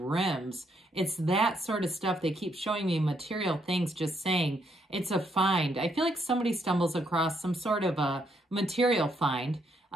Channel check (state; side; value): normal; both; correlation 0.74